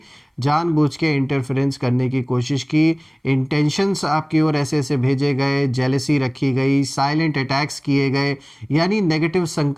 जानबूझ के इंटरफेरेंस करने की कोशिश की। इंटेंशंस आपकी ओर ऐसे ऐसे भेजे गए, जेलसी रखी गई, साइलेंट अटैक्स किए गए, यानी नेगेटिव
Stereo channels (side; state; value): both; identical; correlation 1.00